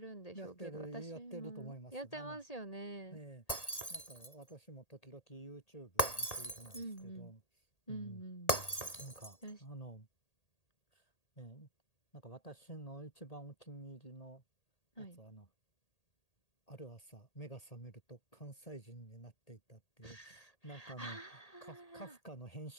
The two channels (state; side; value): late; right; 1.8 ms